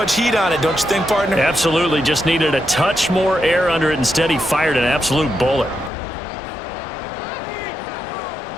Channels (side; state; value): right; drops out; at 5.9 s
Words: heat on it, don't you think, partner? Absolutely. Just needed a touch more air under it. Instead, he fired an absolute bullet.